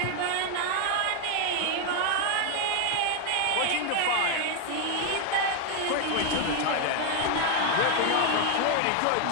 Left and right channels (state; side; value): different; both; correlation 0.01